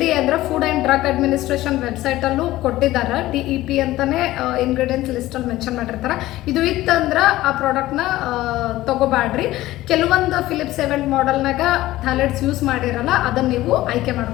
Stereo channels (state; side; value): quieter; right; 16.4 dB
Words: ಅಂದ್ರೆ food and drug administration website ಅಲ್ಲೂ ಕೊಟ್ಟಿದ್ದಾರೆ. DEP ಅಂತಾನೆ ಇಂಗ್ರೀಡಿಯೆಂಟ್ಸ್ ಲಿಸ್ಟ್ ಅಲ್ಲಿ ಮೆನ್ಷನ್ ಮಾಡಿರ್ತಾರ. ಇದು ಇತ್ತಂದ್ರ ಆ ಪ್ರಾಡಕ್ಟ್ನ ತಗೋಬಾಡ್ರಿ. ಕೆಲವೊಂದು ಫಿಲಿಪ್ಸ್ ಎವೆಂಟ್ ಮಾಡೆಲ್ನಾಗ ಥ್ಯಾಲೆಟ್ಸ್ ಯೂಸ್ ಮಾಡಿರಲ್ಲ, ಅದನ್ನ ನೀವು ಆಯ್ಕೆ